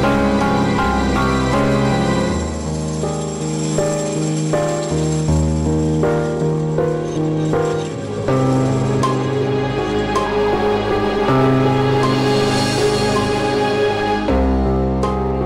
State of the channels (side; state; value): both; identical; correlation 1.00